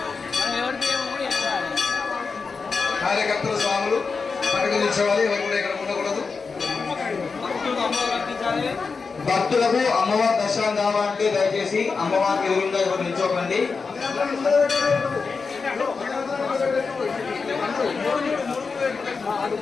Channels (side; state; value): right; quieter; 4.8 dB